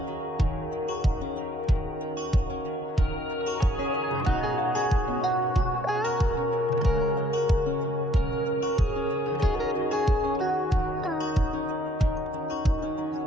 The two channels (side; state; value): both; normal; correlation 0.62